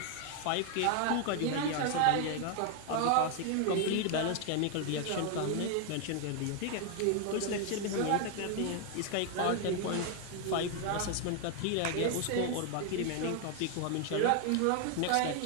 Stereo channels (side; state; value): both; different; correlation 0.01